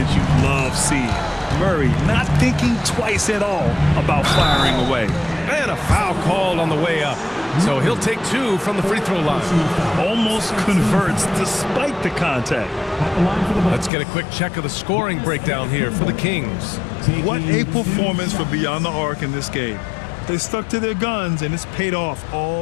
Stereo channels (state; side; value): drops out; right; at 13.9 s